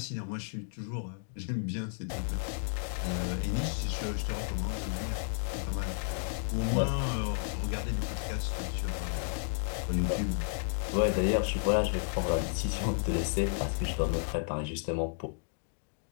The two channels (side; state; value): right; silent; digital silence